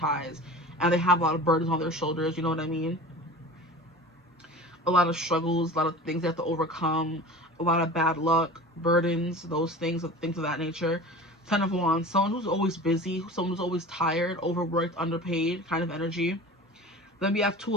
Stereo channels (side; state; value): both; normal; correlation 0.37